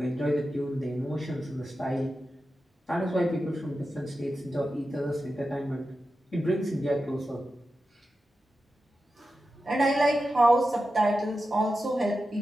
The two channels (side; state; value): both; normal; correlation 0.91